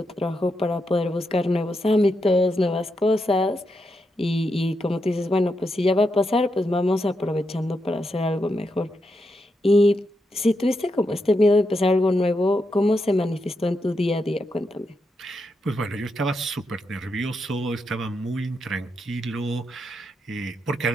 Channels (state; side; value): normal; both; correlation 0.84